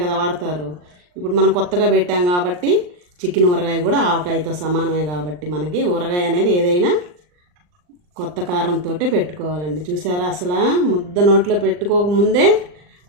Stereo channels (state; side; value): late; left; 39 ms